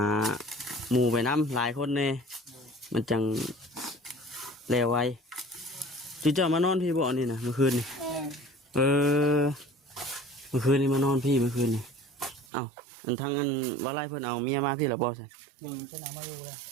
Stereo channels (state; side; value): drops out; left; at 12.5 s